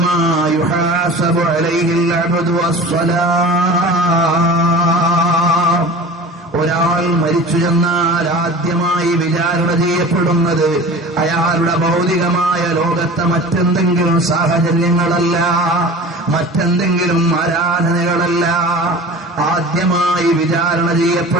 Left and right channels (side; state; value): both; normal; correlation 0.38